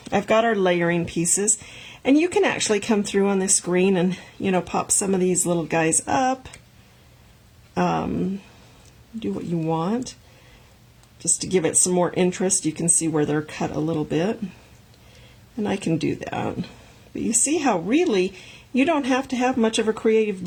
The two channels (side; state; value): both; identical; correlation 1.00